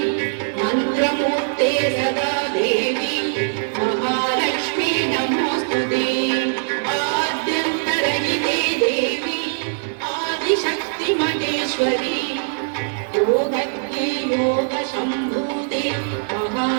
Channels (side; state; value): left; silent; digital silence